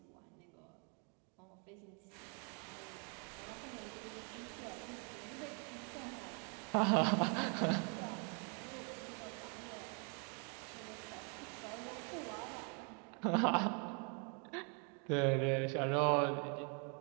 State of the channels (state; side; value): quieter; left; 37.9 dB